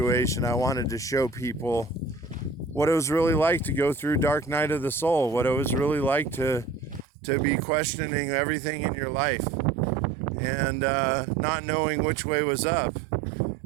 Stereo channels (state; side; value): drops out; left; at 7.1 s